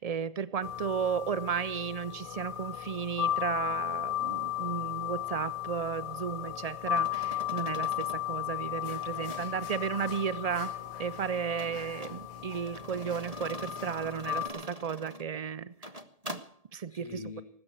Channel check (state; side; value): late; left; 1.7 ms